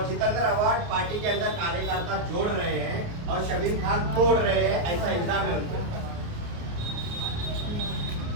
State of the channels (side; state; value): left; late; 29 ms